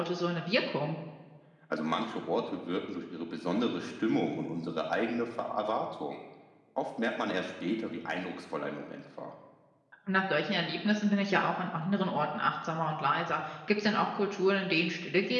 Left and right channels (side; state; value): both; identical; correlation 1.00